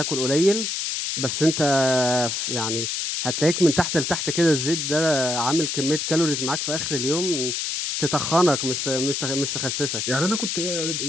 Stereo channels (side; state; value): left; noise; hiss, 2 dB below the sound